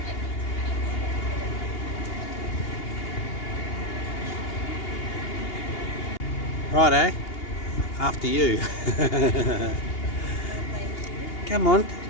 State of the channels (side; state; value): right; late; 2.8 ms